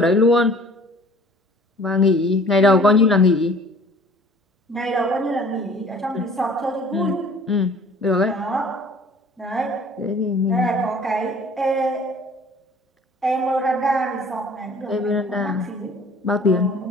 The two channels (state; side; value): normal; both; correlation 0.51